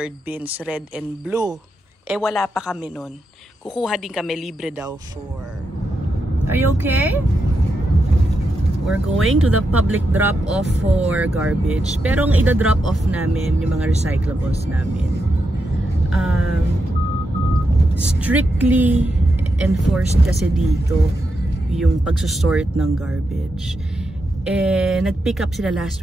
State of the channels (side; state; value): both; normal; correlation 0.85